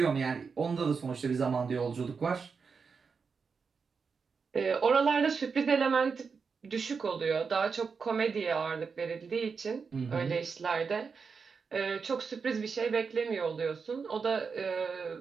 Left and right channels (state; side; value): quieter; left; 5.4 dB